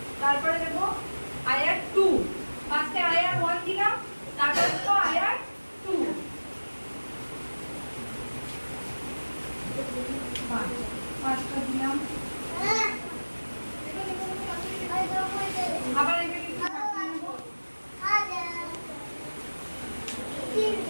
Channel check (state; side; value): inverted; both; correlation -1.00